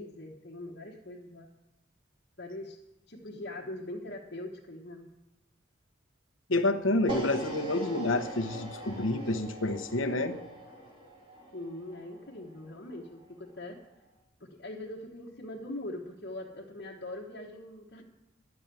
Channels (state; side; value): normal; both; correlation 0.18